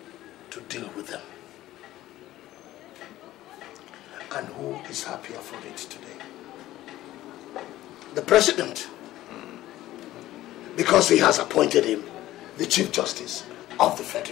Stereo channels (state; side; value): quieter; right; 15.1 dB